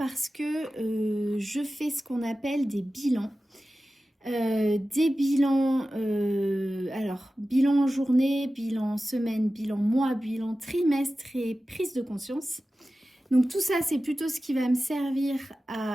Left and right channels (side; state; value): both; normal; correlation 0.95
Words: que je fais ce qu'on appelle des bilans. Des bilans, alors bilan journée, bilan semaine, bilan mois, bilan trimestre et prise de conscience. Donc tout ça, c'est plutôt ce qui va me servir